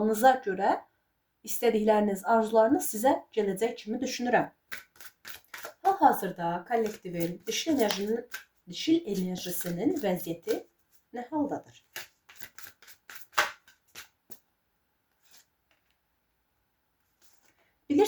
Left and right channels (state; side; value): identical; both; correlation 1.00